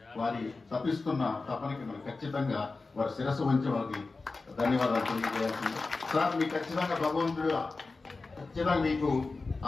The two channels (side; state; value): right; quieter; 3.8 dB